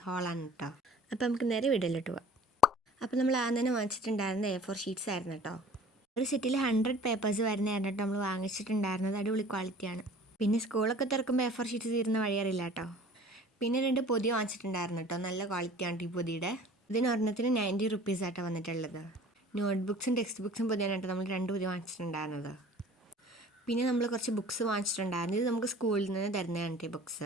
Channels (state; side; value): normal; both; correlation 0.46